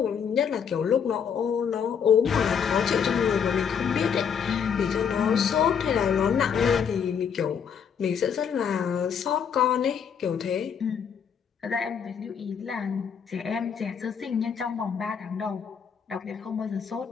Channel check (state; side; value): quieter; right; 7.2 dB